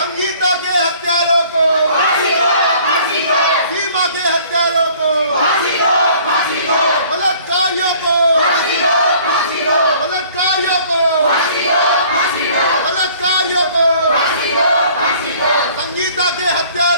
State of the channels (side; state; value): both; inverted; correlation -0.54